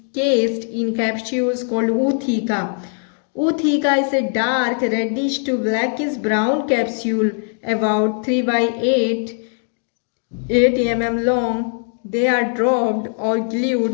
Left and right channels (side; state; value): right; silent; 60 dB below the other